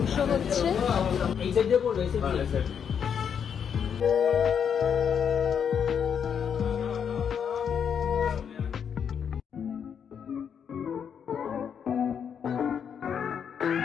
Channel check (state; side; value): quieter; right; 7.6 dB